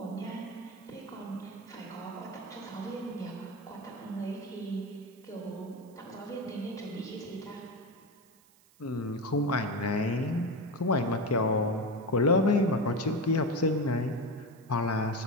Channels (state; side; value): noise; right; hiss, 29 dB below the sound